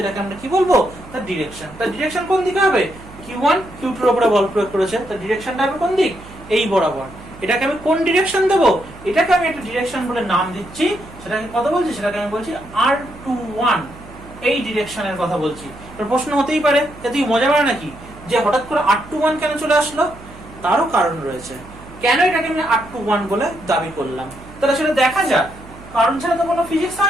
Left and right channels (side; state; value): right; noise; hum, 18 dB below the sound